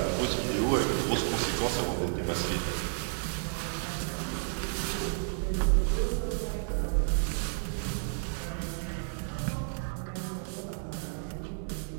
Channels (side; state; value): left; silent; digital silence